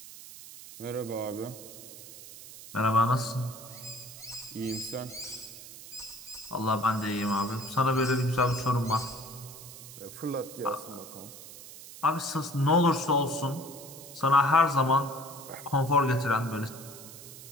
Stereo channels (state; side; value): noise; right; hiss, 15 dB below the sound